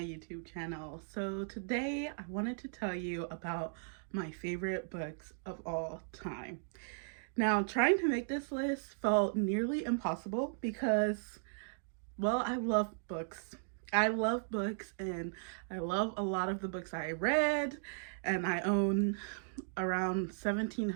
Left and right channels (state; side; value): silent; left; digital silence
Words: YouTube channel. So today I wanted to tell you about my favorite books of all time. Now trying to make this list felt nearly impossible because, well, I love books. I love books and I love a lot of the books I read, and I own around